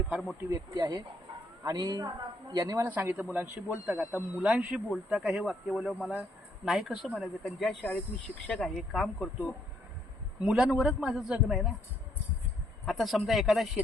फार मोठी व्यक्ती आहे. आणि यांनी मला सांगितलं मुलांशी बोलता का. आता मुलांशी बोलता का हे वाक्य बोलल्यावर मला नाही कसं म्हणायचं. कारण ज्या शाळेत मी शिक्षक आहे, काम करतो, मुलांवरच माझं जगणं आहे ना. आता समजा एखादा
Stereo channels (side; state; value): both; normal; correlation 0.71